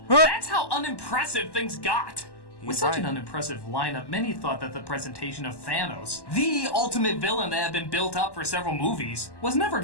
That's how unimpressive things got. With such an unimpressive lineup, many thought that the presentation of Thanos, the ultimate villain that had been built up for several movies, was never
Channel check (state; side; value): late; right; 1.1 ms